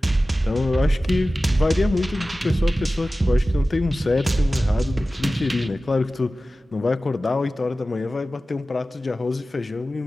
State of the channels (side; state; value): both; normal; correlation 0.96